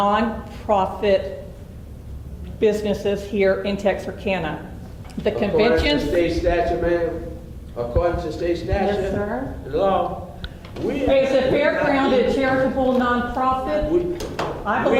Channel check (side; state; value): both; identical; correlation 1.00